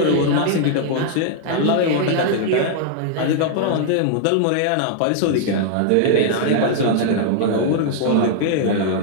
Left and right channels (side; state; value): both; different; correlation -0.01